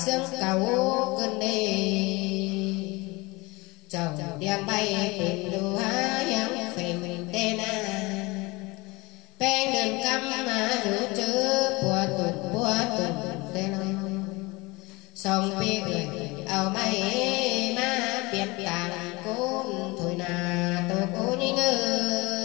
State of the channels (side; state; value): right; quieter; 24.0 dB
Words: xương cầu cơn đi chồng đem bay tìm đu há yang phèn tê na pen đường căm mà rủ chữ